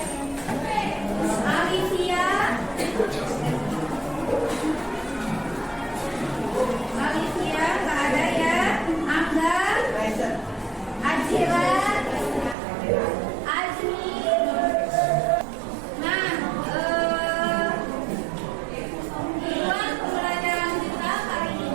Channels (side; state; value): left; drops out; at 12.6 s